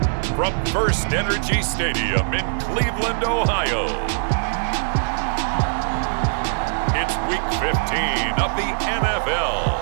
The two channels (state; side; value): silent; left; digital silence